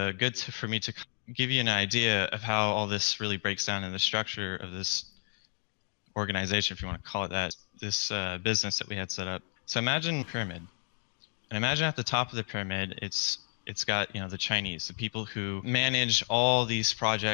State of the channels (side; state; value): right; silent; 57 dB below the other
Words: for me to give you an idea of how all this really breaks down in the structure of this organization, if you want to call it that, this business that we had set up. So imagine a pyramid, and imagine at the top of the pyramid, it's got, you know, the Chinese, the people who manage all these